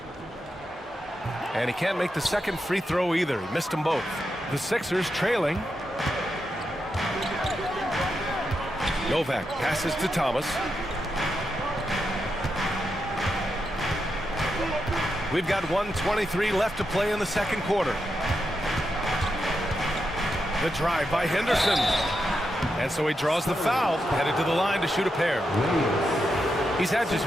And he can't make the second free throw either. He missed them both. The Sixers trailing. Novak passes to Thomas. We've got 1:23 left to play in the second quarter. The drive by Henderson. And so he draws the foul, headed to the line to shoot a pair. He's had just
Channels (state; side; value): normal; both; correlation 0.86